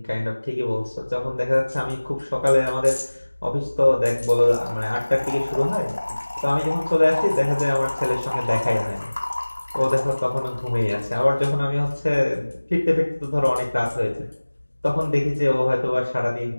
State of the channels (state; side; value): inverted; both; correlation -1.00